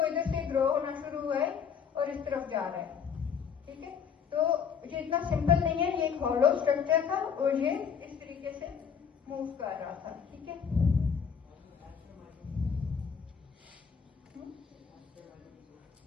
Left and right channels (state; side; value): quieter; right; 6.9 dB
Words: इधर से ग्रो होना शुरू हुआ है और इस तरफ जा रहा है, ठीक है। तो ये इतना सिंपल नहीं है, ये एक हॉलो स्ट्रक्चर था और ये इस तरीके से मूव कर रहा था, ठीक है।